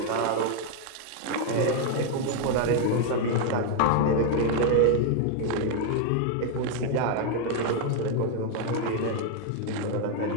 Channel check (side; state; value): both; different; correlation 0.01